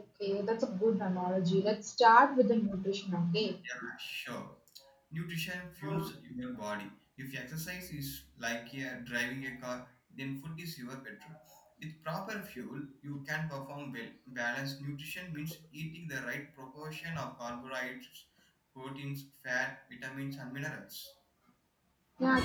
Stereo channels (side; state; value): both; identical; correlation 1.00